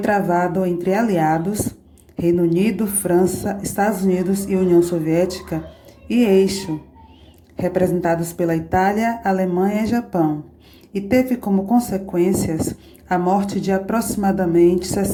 entre aliados, Reino Unido, França, Estados Unidos e União Soviética, e eixo, representados pela Itália, Alemanha e Japão, e teve como consequências a morte de aproximadamente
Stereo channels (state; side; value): identical; both; correlation 1.00